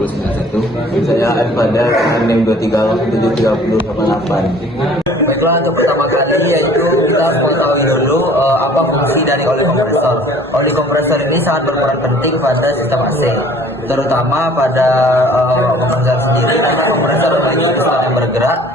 Saya Adpada dengan NIM 2307388. Baiklah, untuk pertama kali yaitu kita harus mengetahui dulu apa fungsi dari oli kompresor. Oli kompresor ini sangat berperan penting pada sistem AC, terutama pada kompresor sendiri karena kompresor memiliki piston yang bergerak,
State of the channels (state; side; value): normal; both; correlation 0.51